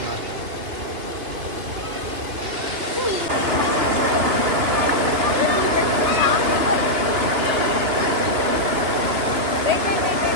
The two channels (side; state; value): left; late; 2.9 ms